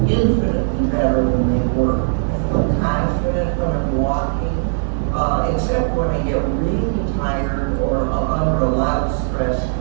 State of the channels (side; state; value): left; silent; digital silence